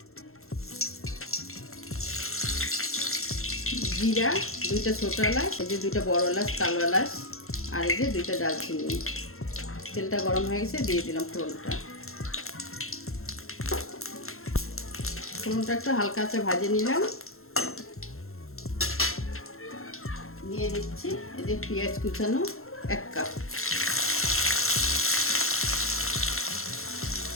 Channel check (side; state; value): right; late; 0.62 ms